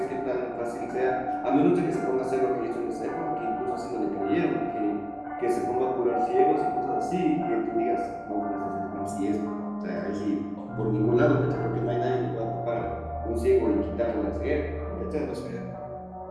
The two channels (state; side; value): identical; both; correlation 1.00